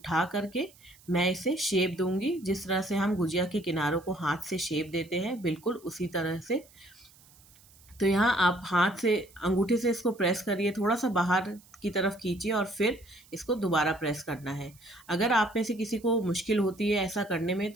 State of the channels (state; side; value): noise; right; hiss, 26 dB below the sound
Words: करके मैं इसे शेप दूंगी, जिस तरह से हम गुजिया के किनारों को हाथ से शेप देते हैं, बिल्कुल उसी तरह से। तो यहाँ आप हाथ से, अंगूठे से इसको प्रेस करिए, थोड़ा सा बाहर की तरफ खींचिए और फिर इसको दोबारा प्रेस करना है। अगर आप में से किसी को मुश्किल होती है ऐसा करने में,